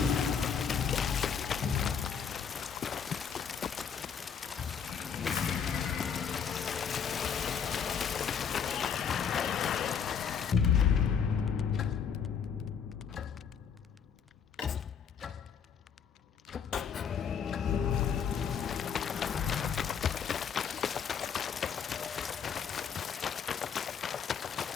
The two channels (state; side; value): quieter; right; 7.1 dB